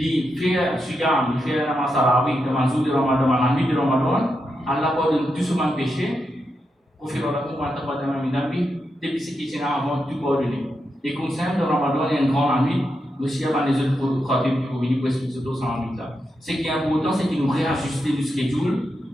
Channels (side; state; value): both; normal; correlation 0.85